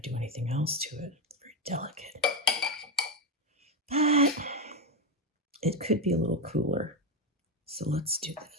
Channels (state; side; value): normal; both; correlation 0.09